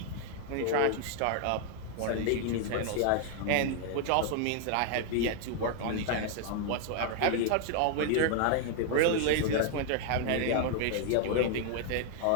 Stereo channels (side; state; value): both; different; correlation 0.00